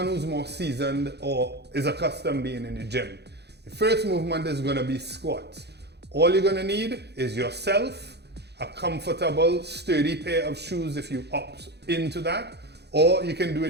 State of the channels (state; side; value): late; left; 0.48 ms